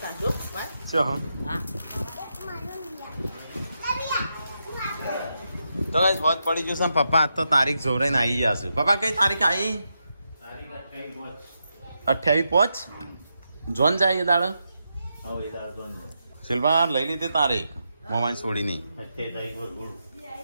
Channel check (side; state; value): both; inverted; correlation -0.85